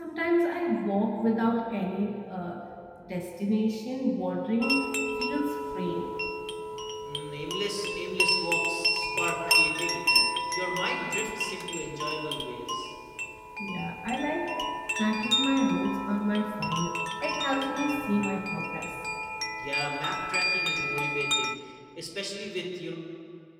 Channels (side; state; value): both; identical; correlation 1.00